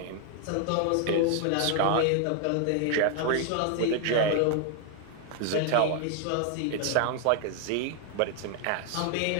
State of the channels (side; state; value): both; different; correlation 0.00